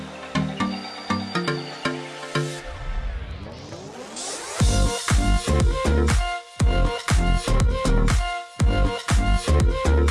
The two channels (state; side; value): identical; both; correlation 1.00